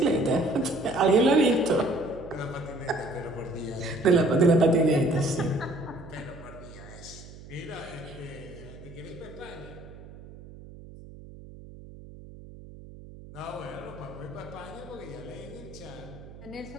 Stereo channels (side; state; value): right; noise; hum, 17 dB below the sound